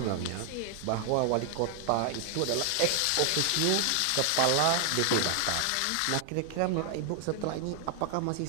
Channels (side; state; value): both; different; correlation 0.00